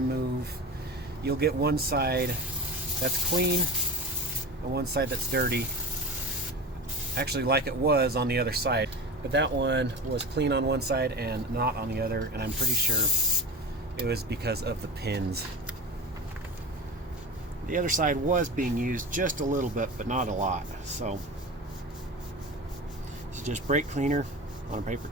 move, you'll get one side that's clean and one side that's dirty, actually like it was on the other side. But that one was clean on one side and not on the other, and I'm pretty sure it was because of the pins. The other side was being used just a little bit, but not a lot. So this is just brake cleaner on a paper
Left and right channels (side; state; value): both; normal; correlation 0.31